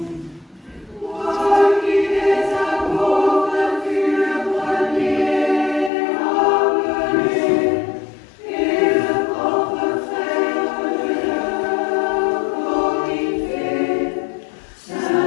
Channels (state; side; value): drops out; right; at 5.9 s